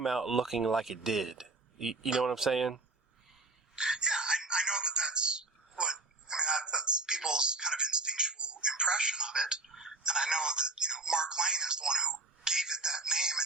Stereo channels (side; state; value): left; quieter; 3.2 dB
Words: out looking like it did. You know what I'm saying? Yeah, I know that's that's people's kind of instinctual impression of it. And I know that, you know, Mark Lane is the one who gave it that name in